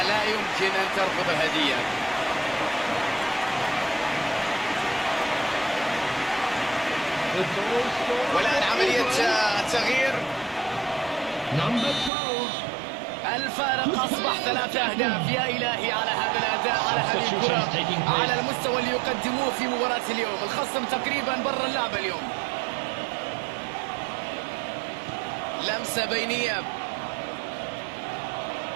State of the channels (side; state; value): left; drops out; at 12.1 s